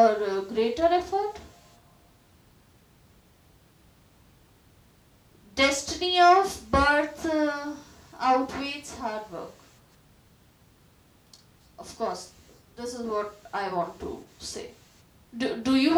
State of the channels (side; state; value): both; identical; correlation 1.00